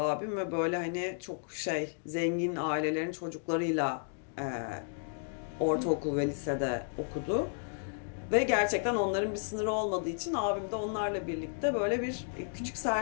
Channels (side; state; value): right; silent; digital silence